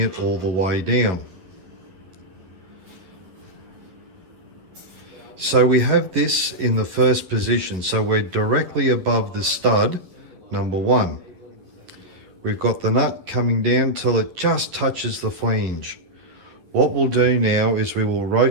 all the way down. So we have this in the first position, so we're directly above the stud, number 1. We've got the nut coming down till it just touches the flange. What we'll do now is we will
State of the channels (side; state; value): left; late; 11 ms